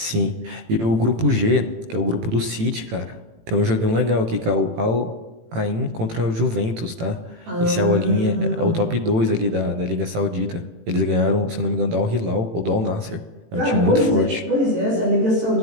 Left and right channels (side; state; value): left; late; 18 ms